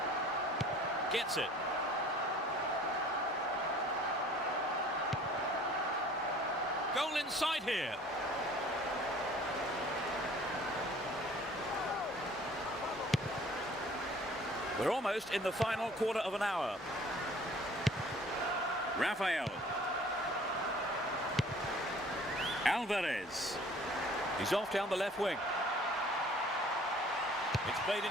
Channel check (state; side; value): normal; both; correlation 0.51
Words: Gets it. Goal inside here. We're almost in the final quarter of an hour. Rafael. Alvarez. He's off down the left wing. It's played